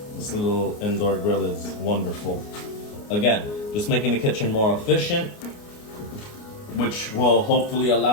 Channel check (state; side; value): late; right; 29 ms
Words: This little indoor grill is wonderful. Again, just making the kitchen more efficient, which will hopefully